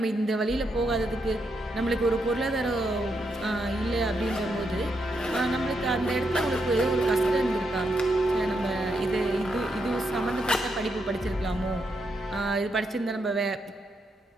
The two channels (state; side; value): normal; both; correlation 0.81